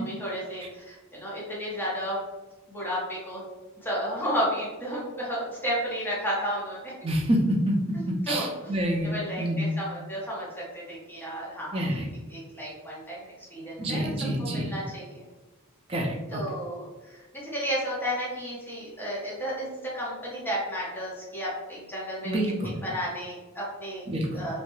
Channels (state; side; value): normal; both; correlation 0.40